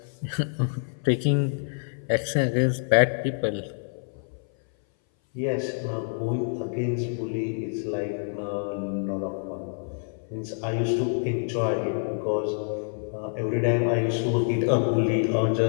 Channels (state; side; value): silent; right; 58 dB below the other